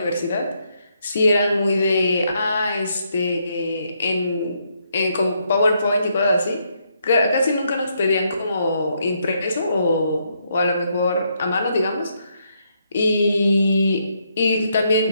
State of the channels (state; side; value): inverted; both; correlation -0.76